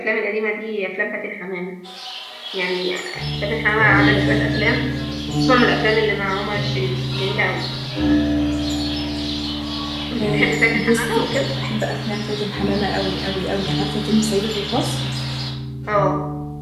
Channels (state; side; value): identical; both; correlation 1.00